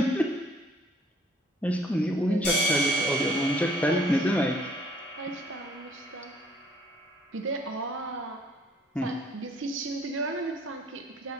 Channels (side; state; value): both; normal; correlation 0.60